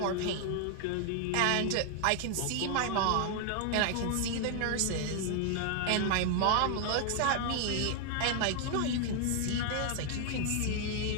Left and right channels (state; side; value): different; both; correlation 0.00